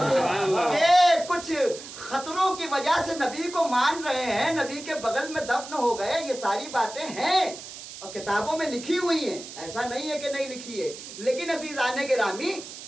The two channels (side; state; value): right; noise; hiss, 13 dB below the sound